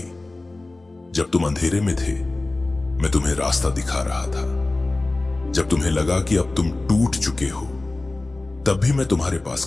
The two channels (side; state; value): right; quieter; 3.0 dB